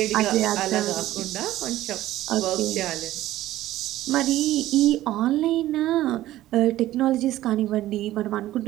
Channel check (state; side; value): quieter; left; 14.9 dB